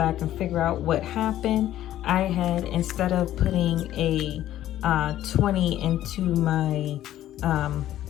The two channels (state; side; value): quieter; right; 12.9 dB